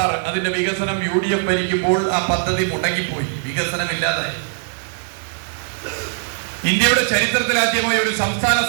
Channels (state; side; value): silent; left; 61 dB below the other